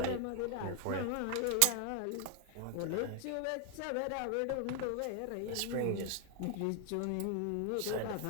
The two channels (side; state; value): both; different; correlation 0.00